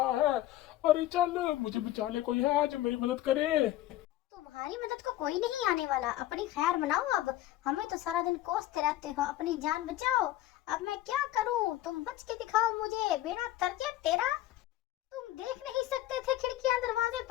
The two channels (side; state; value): right; quieter; 14.5 dB